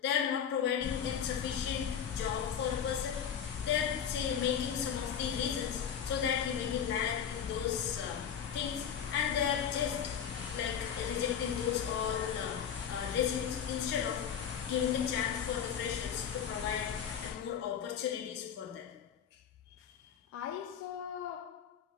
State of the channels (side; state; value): right; quieter; 8.3 dB